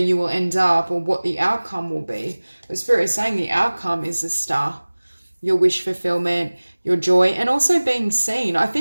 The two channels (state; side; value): inverted; both; correlation -1.00